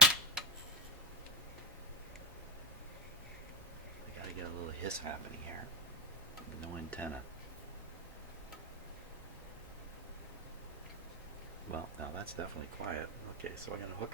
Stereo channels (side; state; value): both; normal; correlation 0.10